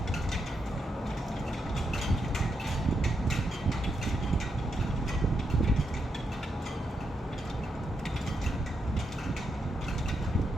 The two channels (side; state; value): both; normal; correlation 0.82